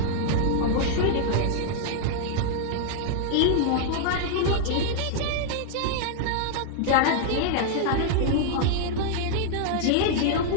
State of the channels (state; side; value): different; both; correlation -0.01